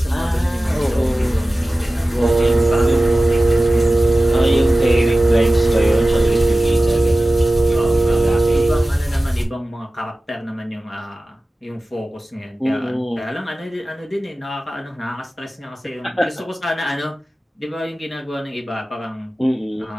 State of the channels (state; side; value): normal; both; correlation 0.96